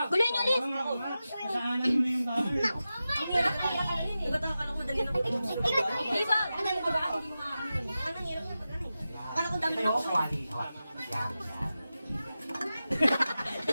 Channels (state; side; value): inverted; both; correlation -0.93